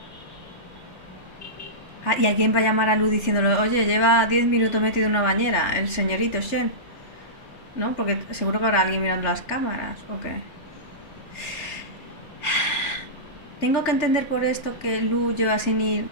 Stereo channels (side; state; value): right; late; 3.6 ms